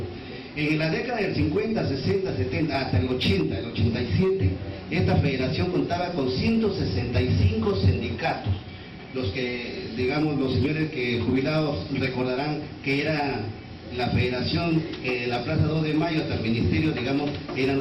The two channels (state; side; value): identical; both; correlation 1.00